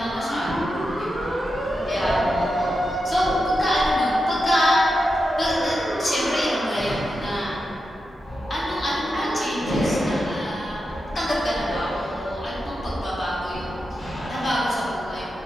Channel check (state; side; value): normal; both; correlation 0.89